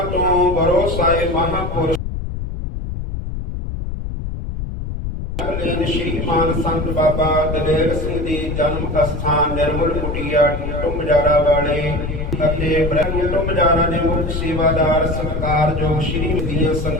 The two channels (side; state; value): left; noise; rumble, 5 dB below the sound